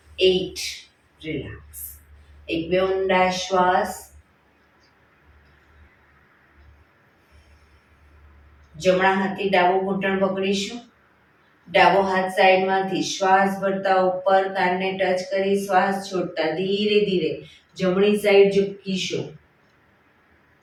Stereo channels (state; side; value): identical; both; correlation 1.00